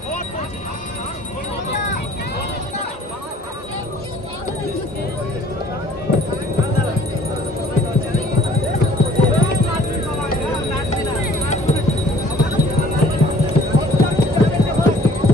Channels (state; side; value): normal; both; correlation 0.54